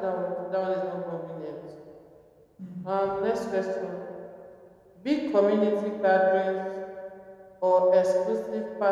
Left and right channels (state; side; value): identical; both; correlation 1.00